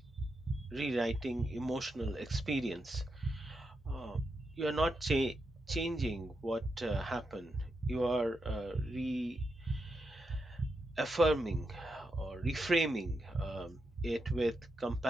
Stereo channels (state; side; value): normal; both; correlation 0.85